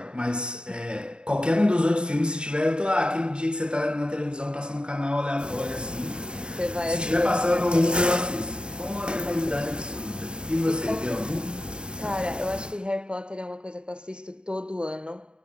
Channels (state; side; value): late; left; 0.050 ms